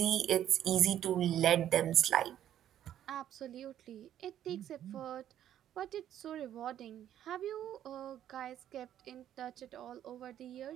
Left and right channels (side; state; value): left; quieter; 11.0 dB